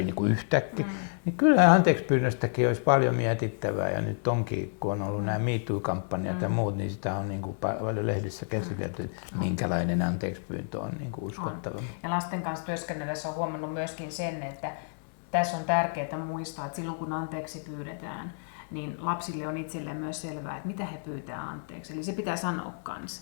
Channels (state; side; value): silent; right; digital silence